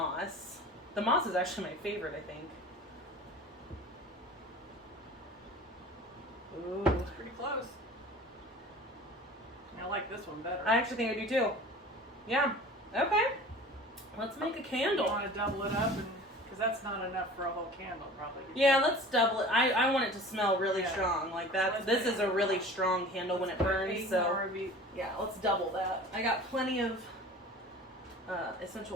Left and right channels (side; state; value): both; normal; correlation 0.42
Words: The moss is actually my favorite, I think. Ooh. It's pretty close. I like this one better. I actually think I do too. Yeah. Okay. Let's make a candle. You want to double it up, because that's not enough for a whole candle, probably. Yeah, let's double it. I want it to smell really strong. Like that. So this is a really strong candle when it burns. So yeah, let's double that. I got plenty of essential